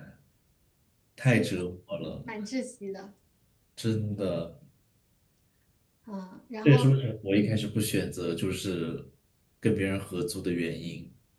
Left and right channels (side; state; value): both; identical; correlation 1.00